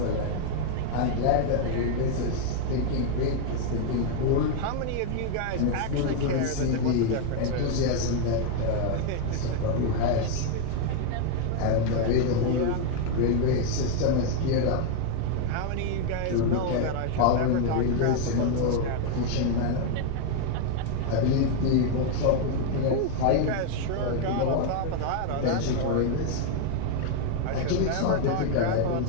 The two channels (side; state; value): both; different; correlation 0.00